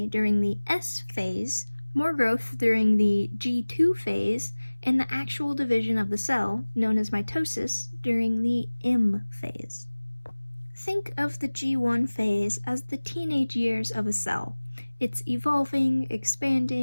during the S phase, more growth during the G2 phase, and the actual division of the cell, known as mitosis, during the M phase. Think of the G1 phase as the teenage years of a cell. It's evolving,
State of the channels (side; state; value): both; inverted; correlation -1.00